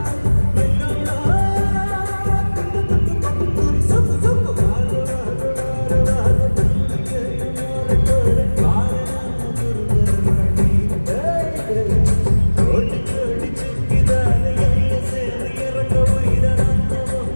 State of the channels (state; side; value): inverted; both; correlation -1.00